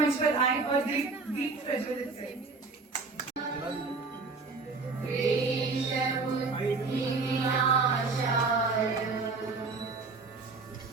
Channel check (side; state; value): left; quieter; 4.1 dB